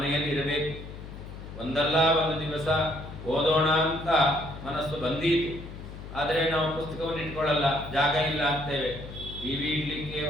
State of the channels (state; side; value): noise; left; hum, 12 dB below the sound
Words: ಇರಬೇಕು. ಒಂದಲ್ಲ ಒಂದು ದಿವಸ ಓದೋಣ ಅಂತ ಮನಸ್ಸು ಬಂದೀತು, ಆದರೆ ನಾವು ಪುಸ್ತಕವನ್ನು ಇಟ್ಕೊಳ್ಳಲ್ಲ, ಜಾಗ ಇಲ್ಲ ಅಂತೇವೆ. ಟಿವಿ ಇಡ್ಲಿಕ್ಕೆ,